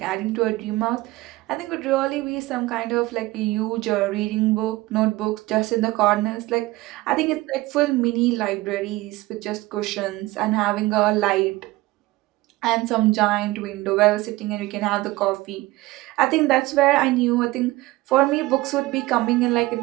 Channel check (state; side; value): quieter; left; 19.3 dB